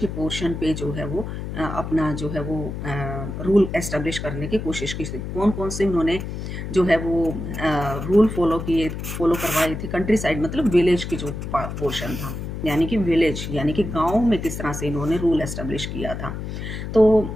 पोर्शन पे जो है वो अपना जो है वो रूल एस्टेब्लिश करने की कोशिश की थी। कौन कौन से उन्होंने जो है वो रूल फॉलो करवाए थे। कंट्री साइड मतलब विलेज की जो पोर्शन था, यानी कि विलेज यानी कि गांव में किस तरह से इन्होंने रूल एस्टेब्लिश किया था। तो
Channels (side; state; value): left; noise; hum, 6 dB below the sound